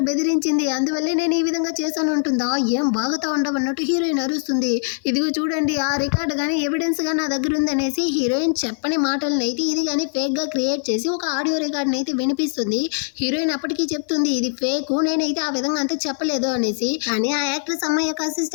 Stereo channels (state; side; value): silent; right; 56 dB below the other